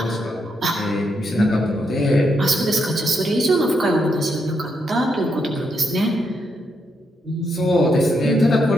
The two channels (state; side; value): normal; both; correlation 0.80